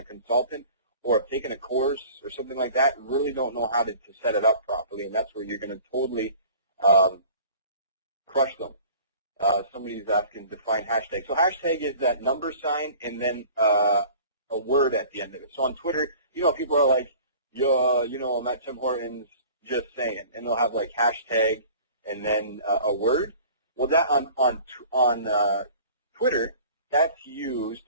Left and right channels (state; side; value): inverted; both; correlation -0.46